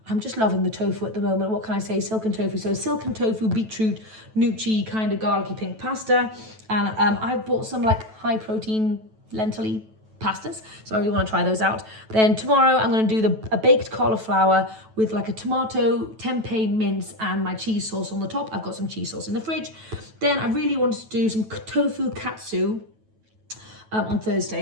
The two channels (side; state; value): left; late; 9.2 ms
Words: I'm just loving the tofu at the moment. What can I say? Silken tofu. So silken tofu, beetroot, gnocchi, kind of garlicky pink pasta. And I've bought some like high protein lentil-y pastas, so I really want to try those out. Then tomorrow I'm going to do a baked cauliflower with like a tomato, tempeh mince, and my cheese sauce on the top. I've got some cheese sauce in the fridge. Then I really wanted to do some tofu katsu on